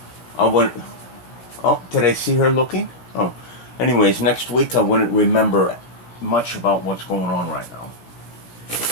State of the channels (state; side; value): late; right; 17 ms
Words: I want... Oh, did I see her looking? Oh. Anyways, next week I wouldn't remember much about what's going on right now.